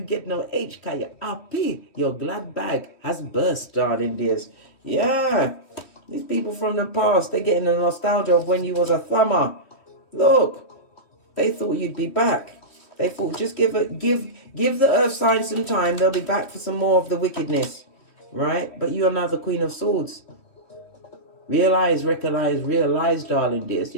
get no H, cause you're happy. Your glad bag has burst, darling dears. Yeah. These people from the past, they're getting the nostalgia of when you was a thumber. Look. They thought you'd be back. They thought just give the earth sign some time. They'll be back for some more of the wickedness. Right? But you are now the Queen of Swords. Realize, darling dears.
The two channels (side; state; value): right; late; 3.1 ms